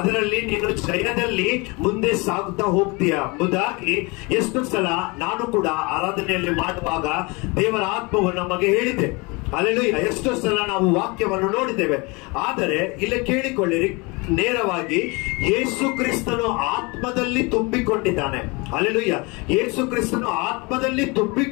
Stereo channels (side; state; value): right; quieter; 27.2 dB